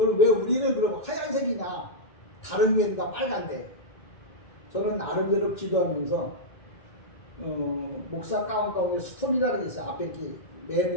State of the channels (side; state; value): right; late; 2.2 ms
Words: 왜 우리는 그럼 하얀색이냐? 다른 교회는 다 빨간데. 저는 나름대로 기도하면서 목사 가운 가운데 스토리라는 게 있어요. 앞에 이렇게